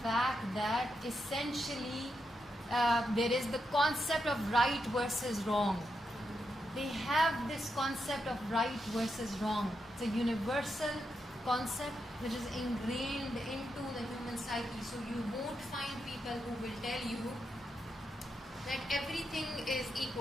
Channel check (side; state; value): both; normal; correlation 0.84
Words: fact that essentially there is the concept of right versus wrong. They have this concept of right versus wrong. It's a universal concept which is ingrained into the human psyche. So you won't find people who will tell you that everything is